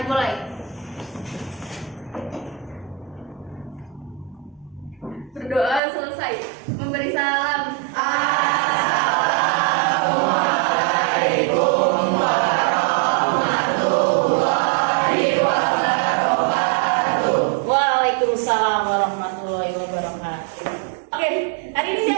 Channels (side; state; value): left; drops out; at 5.8 s